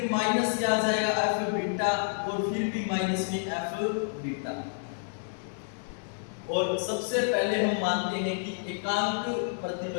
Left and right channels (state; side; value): silent; right; digital silence